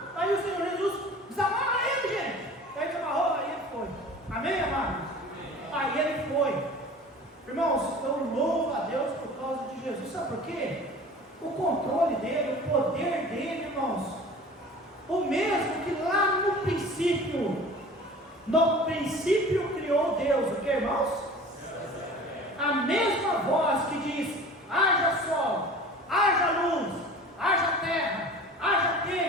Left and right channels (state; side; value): normal; both; correlation 0.41